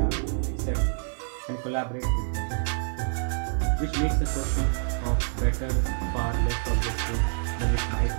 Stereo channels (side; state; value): left; silent; 55 dB below the other